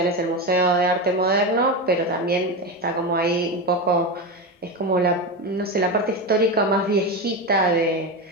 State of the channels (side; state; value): both; normal; correlation 0.17